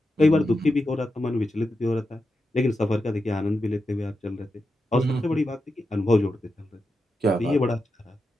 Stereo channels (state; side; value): normal; both; correlation 0.89